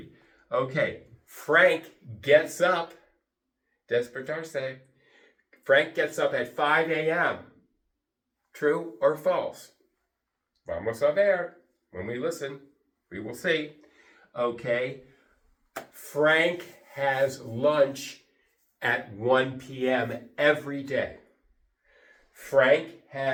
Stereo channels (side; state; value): both; identical; correlation 1.00